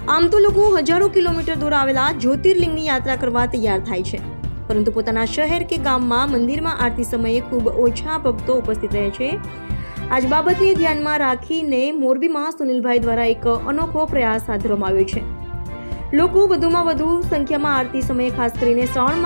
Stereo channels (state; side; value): inverted; both; correlation -1.00